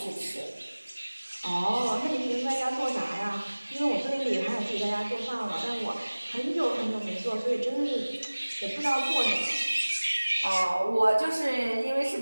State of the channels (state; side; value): inverted; both; correlation -1.00